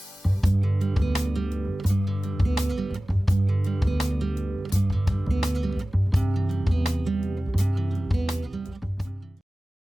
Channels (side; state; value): both; normal; correlation 0.97